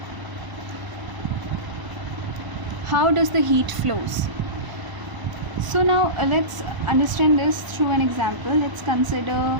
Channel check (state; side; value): late; left; 1.0 ms